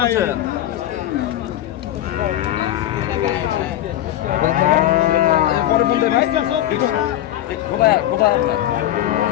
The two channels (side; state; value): right; quieter; 12.9 dB